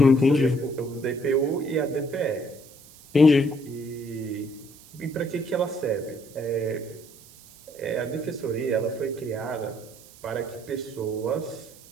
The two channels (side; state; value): right; noise; hiss, 22 dB below the sound